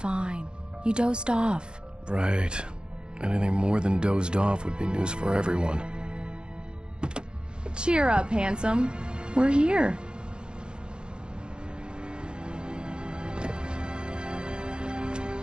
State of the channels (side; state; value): left; late; 0.049 ms